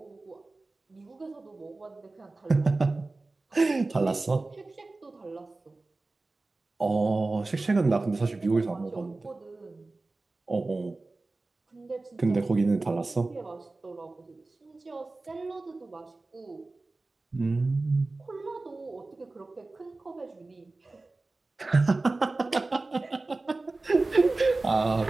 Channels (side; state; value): left; quieter; 3.3 dB